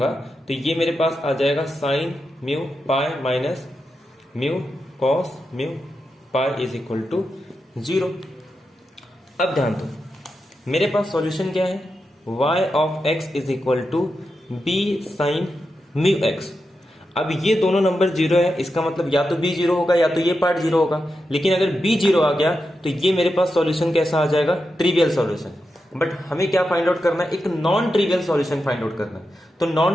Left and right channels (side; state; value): both; normal; correlation 0.88